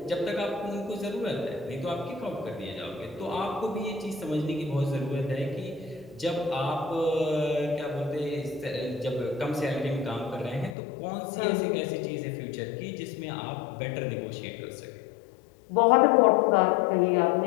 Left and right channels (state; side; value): drops out; right; at 10.8 s